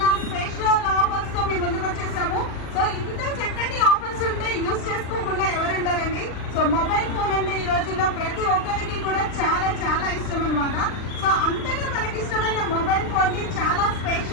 సో మొబైల్ ఫోన్ అంటే ఈ రోజుల్లో ప్రతి ఒక్కరికి కూడా చాలా చాలా ఇష్టం అనమాట. సో అంతగా మనకి ఇష్టమైన మొబైల్ ఫోన్ ని చాలా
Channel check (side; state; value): right; late; 39 ms